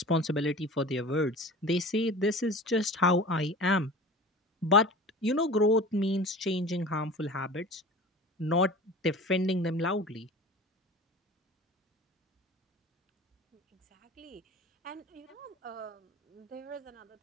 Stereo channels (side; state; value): both; normal; correlation 0.38